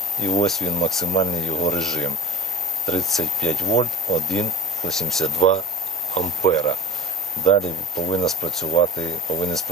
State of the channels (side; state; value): both; normal; correlation 0.37